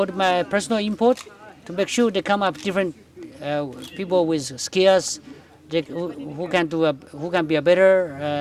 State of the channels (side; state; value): both; identical; correlation 1.00